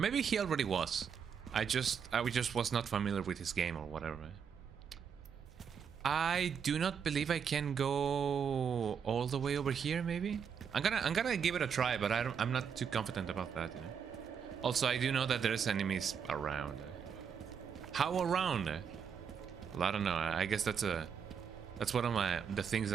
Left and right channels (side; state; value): left; quieter; 7.1 dB